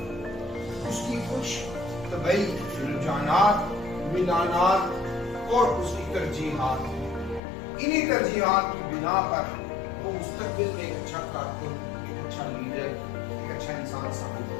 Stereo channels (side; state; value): right; drops out; at 7.4 s